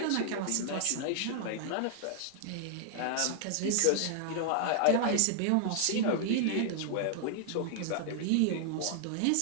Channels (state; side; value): different; both; correlation 0.00